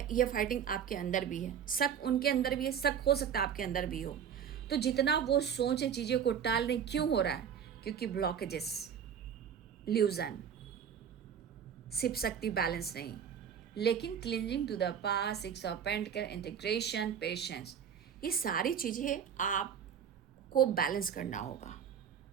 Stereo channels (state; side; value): quieter; left; 8.0 dB